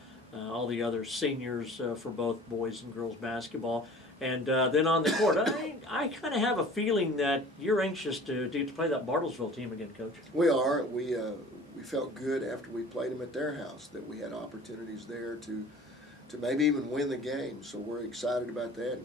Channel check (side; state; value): both; normal; correlation 0.45